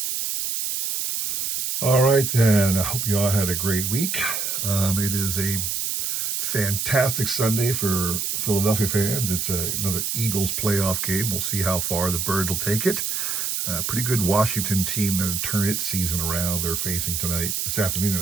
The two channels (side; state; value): right; noise; hiss, 1 dB below the sound